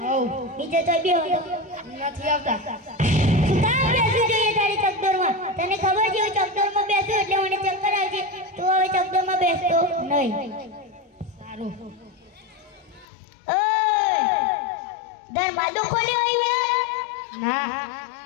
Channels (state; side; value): drops out; right; at 13.1 s